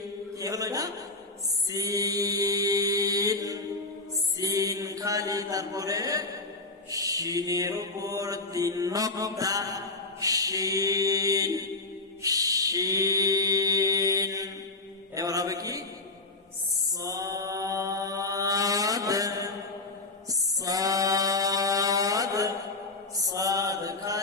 কি হলো এটা? সিন, সিন খালি, তারপরে শিনের উপর 3 নকতা, শিন শিন। এবার হবে কি? সাদ সাদ, সাদ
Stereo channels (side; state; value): right; quieter; 3.2 dB